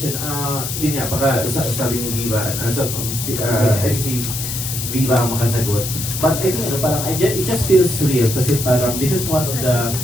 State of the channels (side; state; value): left; noise; hiss, 5 dB below the sound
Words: yun nga, baka sabi ni Viva, I think si Viva ang makasagot. But I think, parang, it just feels real kasi parang, this is one of the,